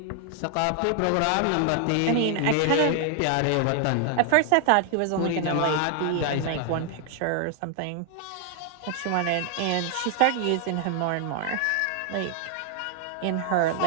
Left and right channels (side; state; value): both; different; correlation 0.00